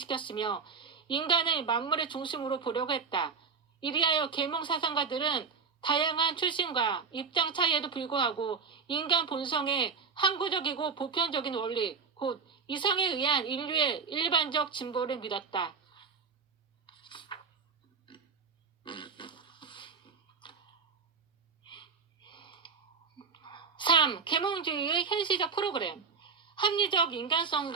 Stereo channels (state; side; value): quieter; left; 5.6 dB